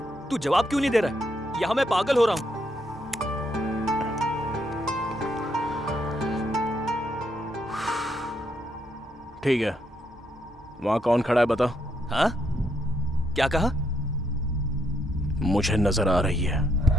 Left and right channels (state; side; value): normal; both; correlation 0.76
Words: तू जवाब क्यों नहीं दे रहा है? यहाँ मैं पागल हो रहा हूँ। ठीक है, वहां कौन खड़ा है बता। हाँ? क्या कहा? मुझे नजर आ रही है।